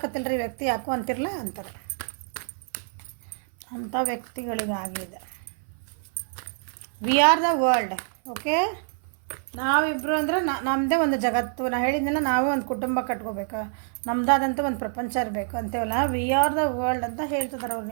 ರೀ ವ್ಯಕ್ತಿ ಯಾಕೋ ಅಂತಿರಲ್ಲ ಅಂತಾರೆ. ಅಂಥ ವ್ಯಕ್ತಿಗಳಿಗಾಗಿದೆ. We are the world. Okay, ನಾವಿಬ್ಬರು ಅಂದ್ರೆ ನಮ್ಮದೇ ಒಂದು ಜಗತ್ತು. ನಾನು ಹೇಳಿದ್ನಲ್ಲ, ನಾವೇ ಒಂದು ಕುಟುಂಬ ಕಟ್ಕೋಬೇಕು, ನಮ್ಮದಾದಂಥ ಒಂದು ಪ್ರಪಂಚ ಇರಬೇಕು ಅಂತೇವಲ್ಲ. ವಿ ಆರ್ ದ ವರ್ಲ್ಡ್ ಅಂತ ಹೇಳ್ತಿದ್ದಾರೆ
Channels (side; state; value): left; silent; 58 dB below the other